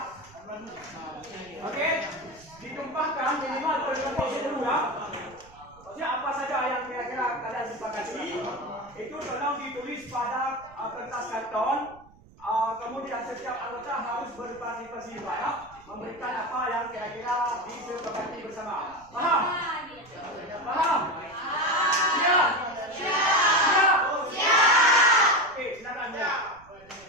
Oke, ditumpahkan minimal per 20 ya. Maksudnya apa saja yang kira-kira kalian sepakati itu tolong ditulis pada kertas karton. Kemudian setiap anggota harus berpartisipasi juga ya, memberikan apa yang kira-kira disepakati bersama. Paham? Paham? Siap? Siap? Oke, silakan ya.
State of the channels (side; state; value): right; noise; rumble, 25 dB below the sound